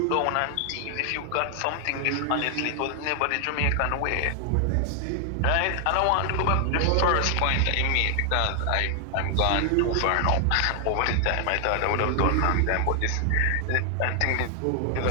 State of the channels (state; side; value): different; both; correlation 0.00